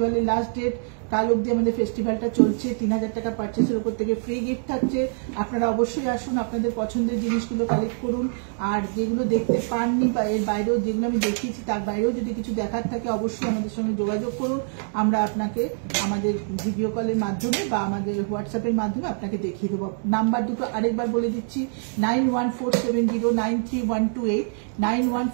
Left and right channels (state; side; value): silent; left; 60 dB below the other